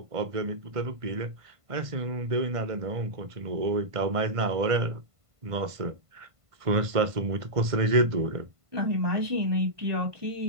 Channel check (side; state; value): left; late; 1.5 ms